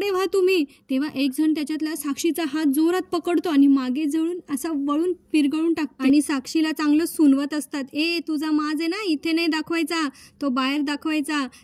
व्हा तुम्ही. तेव्हा एक जण त्याच्यातला साक्षीचा हात जोरात पकडतो आणि मागे जळून असा वळून पिरगळून टाकतो आणि साक्षीला चांगलं सुनवत असतात. तुझा माज आहे ना, इथे नाही दाखवायचा, तो बाहेर दाखवायचा.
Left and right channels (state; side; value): identical; both; correlation 1.00